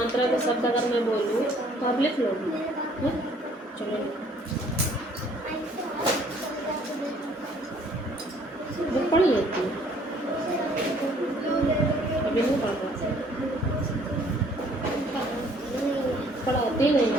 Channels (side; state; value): both; normal; correlation 0.59